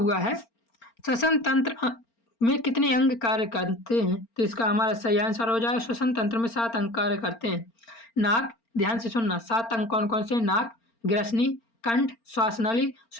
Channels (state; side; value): late; right; 4.4 ms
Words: है, श्वसन तंत्र में कितने अंग कार्य करते हैं? तो इसका हमारा सही आंसर हो जाएगा, श्वसन तंत्र में 7 अंग कार्य करते हैं। नाक, ध्यान से सुनना, 7 अंग कौन कौन से? नाक, ग्रसनी, कंठ, श्वासनली,